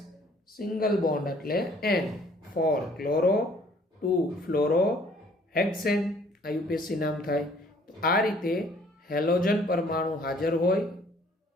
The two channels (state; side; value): normal; both; correlation 0.58